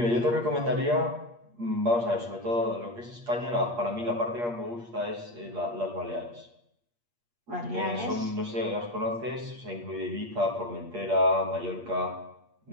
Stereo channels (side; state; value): left; late; 8.5 ms